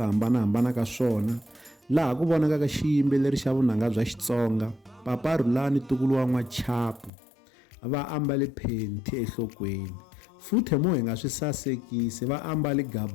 hambanahambana ka swona, laha ku vonakaka xiyimbeleri xa vunanga bya Xitsonga Papa Rhulani Tukulu wa N'wachapu va ambale phenti enhlokweni, futhi mo hi nga swi sasekisi va ambale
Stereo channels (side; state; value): right; drops out; at 7.1 s